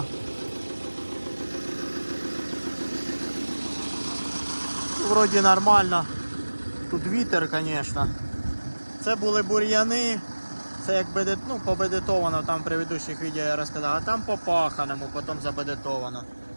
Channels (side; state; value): both; inverted; correlation -1.00